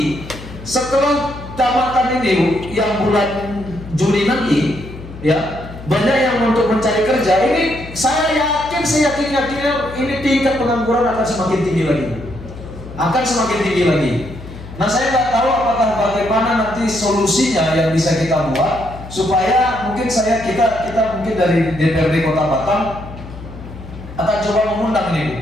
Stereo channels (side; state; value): left; noise; hum, 14 dB below the sound